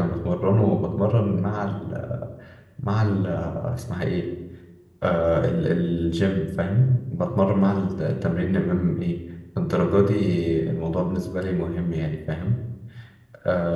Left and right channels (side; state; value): both; identical; correlation 1.00